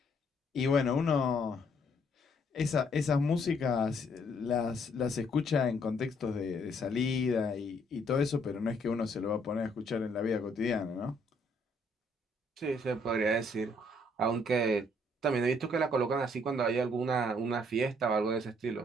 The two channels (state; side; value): normal; both; correlation 0.67